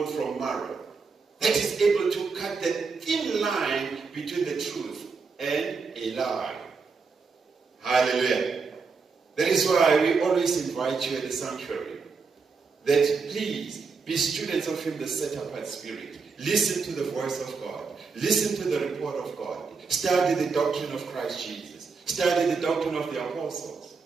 from marrow. That is able to cut the thin line between the truth and a lie. Hallelujah. That is why we always invite you at the sanctuary that please Be students of him, the set-apart spirit. Listen to the voice of God. Listen to the report of God. Study the doctrine of Christ Jesus. Study the doctrine of the apostles.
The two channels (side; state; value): left; quieter; 4.9 dB